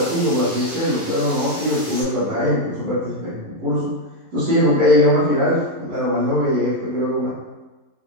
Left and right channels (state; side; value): late; left; 11 ms